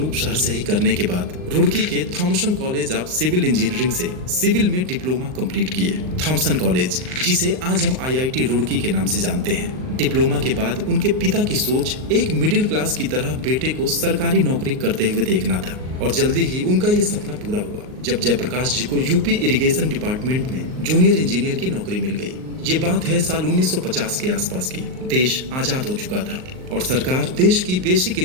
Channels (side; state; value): left; late; 38 ms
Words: शहर से ही करने के बाद रुड़की के Thomson college of civil engineering से सिविल में डिप्लोमा कंप्लीट किए। थॉमसन कॉलेज, जिसे आज हम आईआईटी रुड़की के नाम से जानते हैं। डिप्लोमा के बाद उनके पिता की सोच एक मिडिल क्लास की तरह बेटे को सरकारी नौकरी करते हुए देखना था और जल्दी ही उनका ये सपना पूरा हुआ जब जयप्रकाश जी को यूपी इरिगेशन डिपार्टमेंट में जूनियर इंजीनियर की नौकरी मिल गई। ये बात है साल 1950 के आसपास की। देश आजाद हो चुका था और सरकार देश की बेसिक